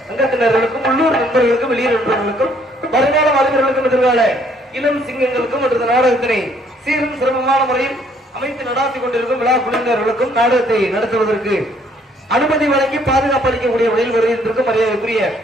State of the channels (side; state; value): both; normal; correlation 0.64